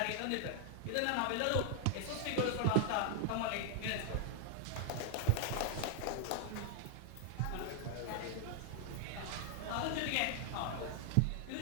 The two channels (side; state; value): both; different; correlation 0.00